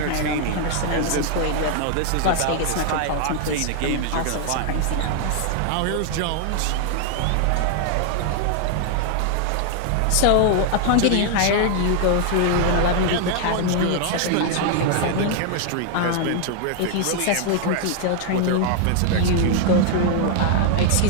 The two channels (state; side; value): different; both; correlation 0.00